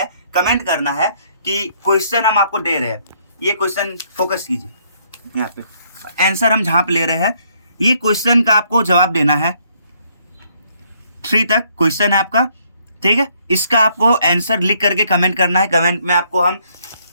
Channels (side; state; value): both; inverted; correlation -0.68